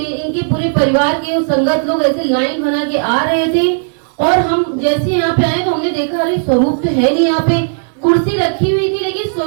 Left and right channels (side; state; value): left; silent; digital silence